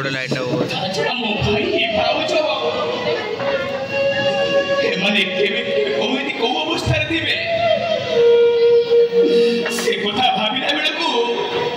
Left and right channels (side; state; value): both; identical; correlation 1.00